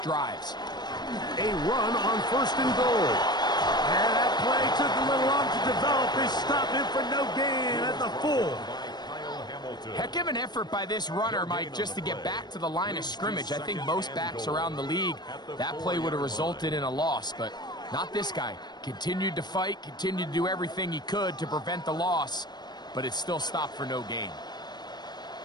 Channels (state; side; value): late; right; 0.20 ms